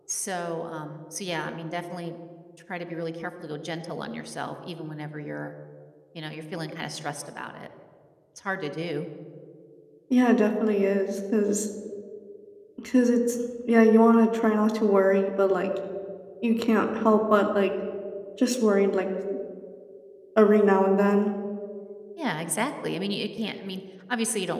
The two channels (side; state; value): both; identical; correlation 1.00